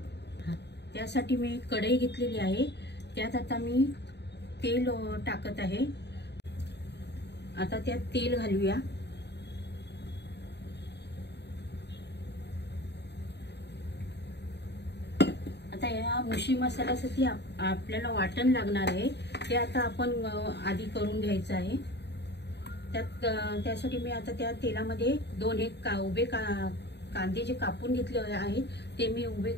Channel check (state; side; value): late; right; 0.50 ms